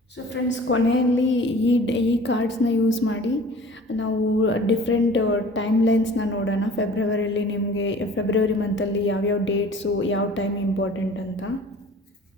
ಸೊ ಫ್ರೆಂಡ್ಸ್, ಕೊನೆಯಲ್ಲಿ ಈ ಕಾರ್ಡ್ಸ್ನ ಯೂಸ್ ಮಾಡಿ ನಾವು ಡಿಫ್ರೆಂಟ್ ಟೈಮ್ ಲೈನ್ಸ್ನ ನೋಡೋಣ. ಫೆಬ್ರವರಿಯಲ್ಲಿ ನಿಮಗೆ ಫೆಬ್ರವರಿ ಮಂತಲ್ಲಿ ಯಾವ್ಯಾವ ಡೇಟ್ಸು, ಯಾವ ಟೈಮ್ ಇಂಪಾರ್ಟೆಂಟ್ ಅಂತ.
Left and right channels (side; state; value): both; normal; correlation 0.46